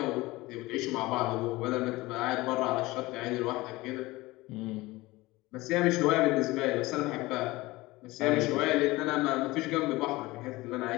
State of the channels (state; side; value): quieter; right; 20.4 dB